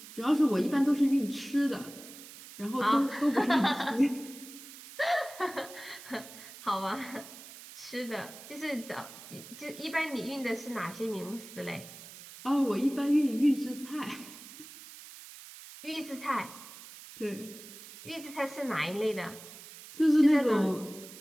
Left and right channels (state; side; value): noise; right; hiss, 16 dB below the sound